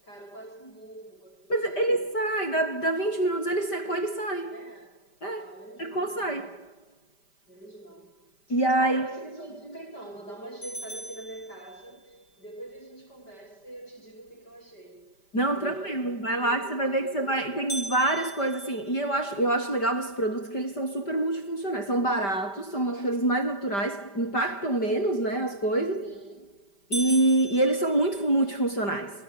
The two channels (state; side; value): late; right; 5.1 ms